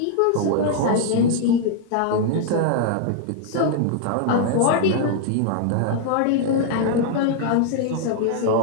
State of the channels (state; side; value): different; both; correlation 0.00